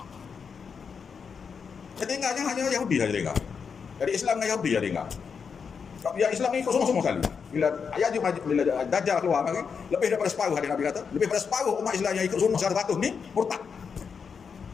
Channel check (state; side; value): quieter; right; 6.1 dB